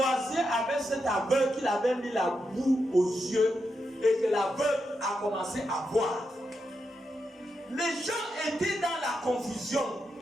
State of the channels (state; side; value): normal; both; correlation 0.85